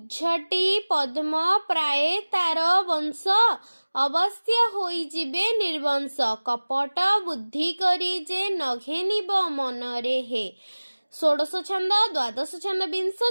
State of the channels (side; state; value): both; inverted; correlation -1.00